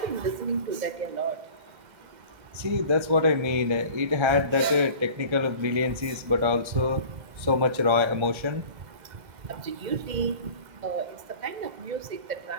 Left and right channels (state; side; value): late; left; 2.0 ms